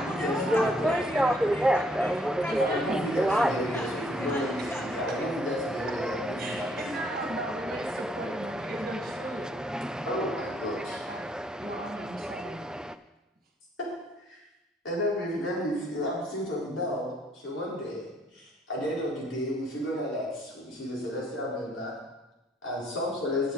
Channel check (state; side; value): normal; both; correlation 0.66